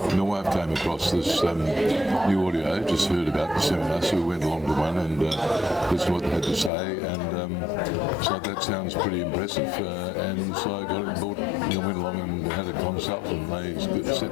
My wife came across this new audio, just heard about the seminar, so we went along to one and listened to what they had to say, and so that sounds pretty impressive, and so I got it and bought, went along and had a consult, and they set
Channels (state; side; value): drops out; right; at 6.7 s